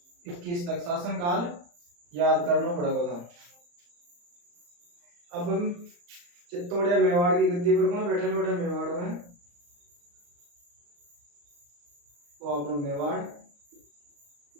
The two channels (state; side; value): late; left; 34 ms